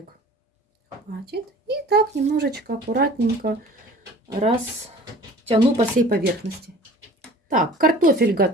Хватит. И так немножечко аккуратненько растяну по всей поверхности. Так, картофель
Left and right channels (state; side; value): normal; both; correlation 0.45